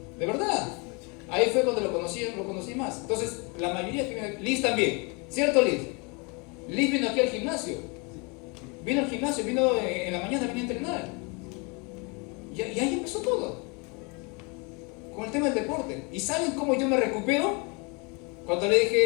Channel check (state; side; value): quieter; right; 31.2 dB